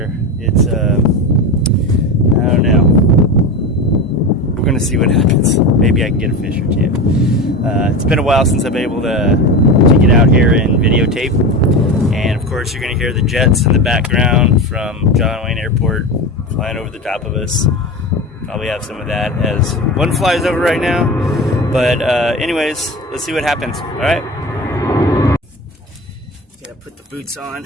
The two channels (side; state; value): both; normal; correlation 0.25